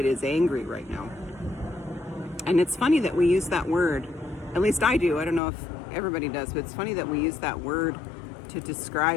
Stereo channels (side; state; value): right; drops out; at 5.4 s